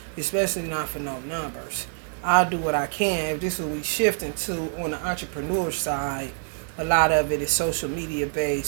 Especially not for no numbers. I'll do what I can. If this is what we shifting to on the entrepreneur side, a lot of it is social media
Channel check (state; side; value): silent; left; digital silence